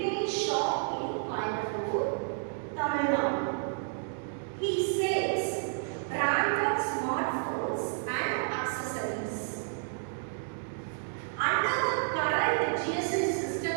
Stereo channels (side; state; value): left; silent; digital silence